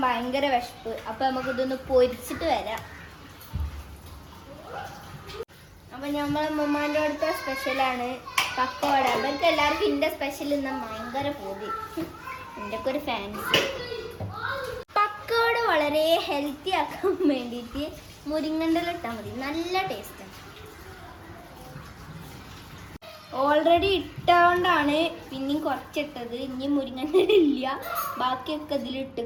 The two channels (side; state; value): both; identical; correlation 1.00